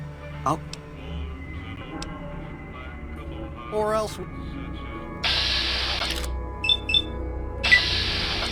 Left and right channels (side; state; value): both; identical; correlation 1.00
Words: I'll... Or else...